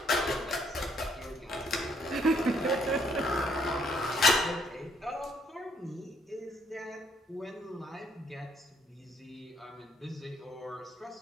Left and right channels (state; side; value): normal; both; correlation 0.68